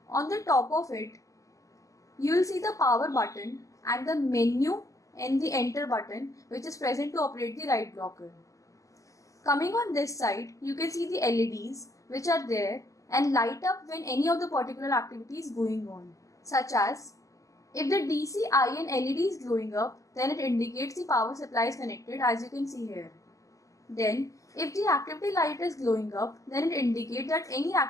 on the top of it, you will see the power button and the menu and the enter button which is present to operate the write blocker. Coming on this side, you can see the LEDs which are there and light up when any of the particular activity is going on, such as if the DCIN LED is glowing up, then it indicates the power supply is connected, as you can see here. Then if the activity light is glowing up, then it indicates that any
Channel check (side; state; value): right; late; 0.16 ms